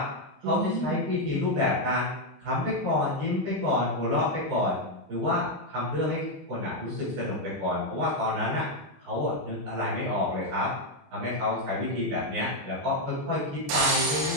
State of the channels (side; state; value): left; late; 21 ms